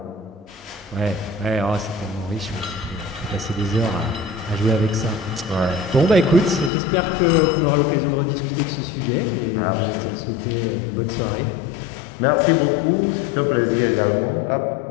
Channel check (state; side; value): drops out; right; at 6.7 s